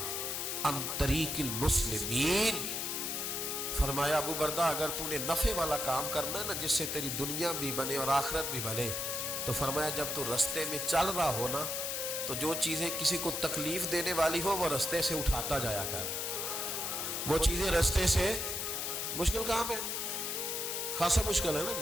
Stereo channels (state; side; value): noise; left; hiss, 2 dB below the sound